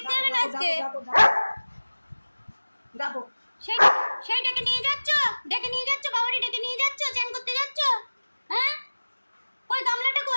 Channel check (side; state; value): both; inverted; correlation -1.00